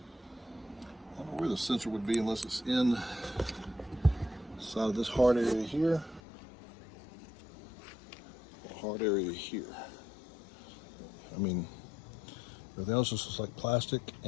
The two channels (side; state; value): right; drops out; at 6.2 s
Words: I don't know where the sensor would be unless it's inside of this hard area here, or hard area here. I mean, everything else just looks like plastic